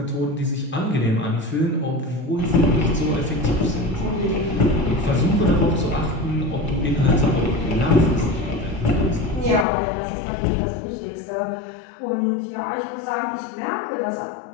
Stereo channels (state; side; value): drops out; right; at 9.7 s